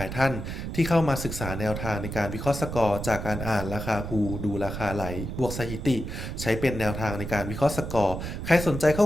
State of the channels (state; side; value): noise; right; rumble, 6 dB below the sound